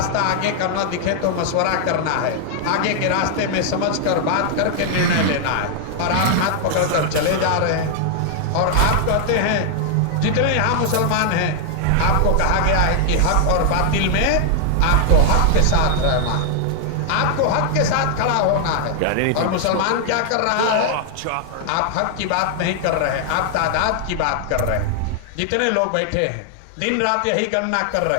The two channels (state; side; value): different; both; correlation 0.00